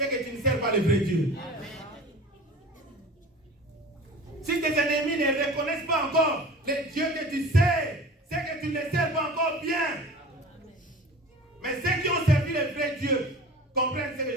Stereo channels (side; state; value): both; normal; correlation 0.39